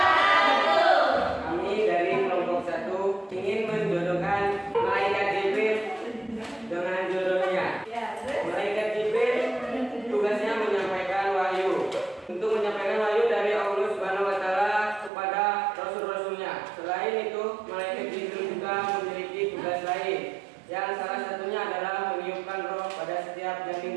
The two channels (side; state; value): left; drops out; at 15.1 s